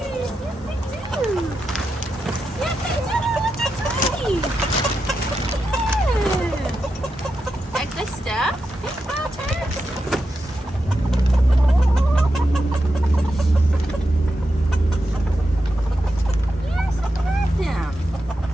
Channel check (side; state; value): both; normal; correlation 0.88